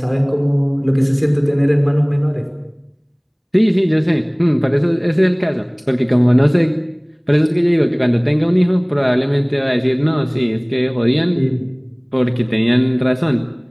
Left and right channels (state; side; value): identical; both; correlation 1.00